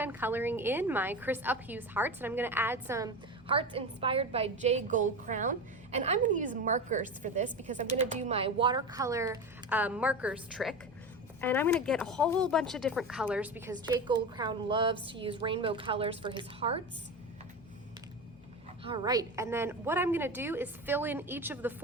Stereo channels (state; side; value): normal; both; correlation 0.24